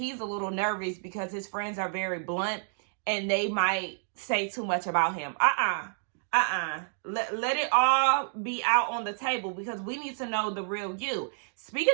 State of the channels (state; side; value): silent; left; digital silence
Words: a little nervous because his friends are very blunt and they might say too much about him. Let it all be out on the table, because we need to know the real you.